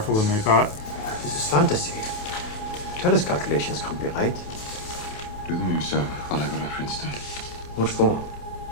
than I thought. This is fantasy. Tell us calculations can't be right. Do them yourself while I go to Princeton. What for?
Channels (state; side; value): late; right; 28 ms